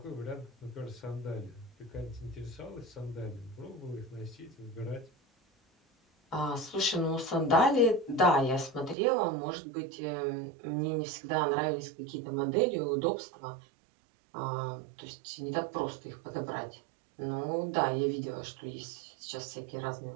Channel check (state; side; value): drops out; left; at 9.0 s